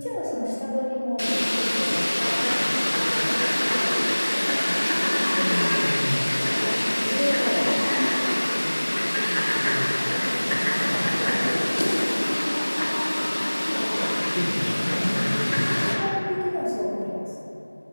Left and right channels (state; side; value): inverted; both; correlation -1.00